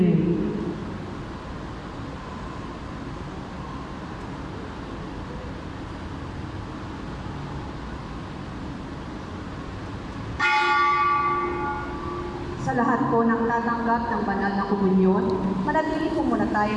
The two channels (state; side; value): identical; both; correlation 1.00